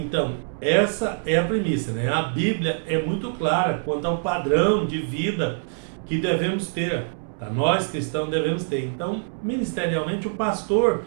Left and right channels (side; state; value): left; silent; digital silence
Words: essa é a premissa, né? A Bíblia é muito clara quanto ao padrão de vida que devemos ter, tá? Nós cristãos devemos ter. Então, ministerialmente, o pastor